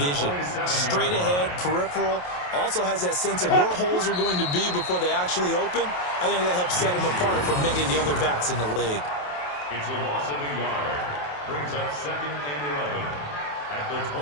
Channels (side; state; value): right; late; 28 ms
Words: Straight ahead, peripheral. Also has that sense of where holes are going to be before they actually open. I think that helps set him apart from many of the other backs in the league. It's a loss of a yard. Brings up 2nd and 11 at the